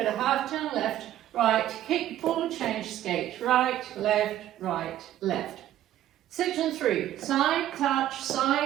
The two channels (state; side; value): quieter; left; 12.7 dB